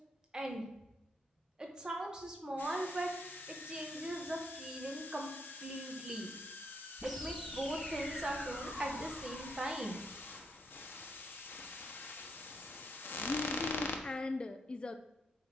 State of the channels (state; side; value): normal; both; correlation 0.74